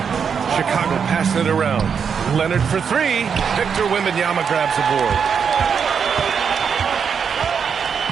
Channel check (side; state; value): left; quieter; 6.7 dB